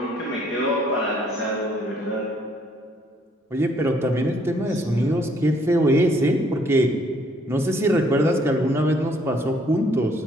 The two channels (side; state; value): both; normal; correlation 0.65